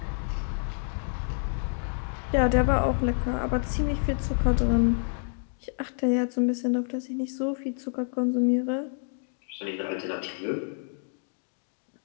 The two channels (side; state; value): right; silent; 59 dB below the other